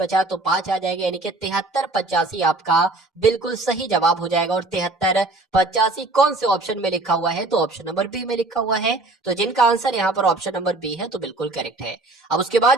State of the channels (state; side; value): quieter; left; 3.0 dB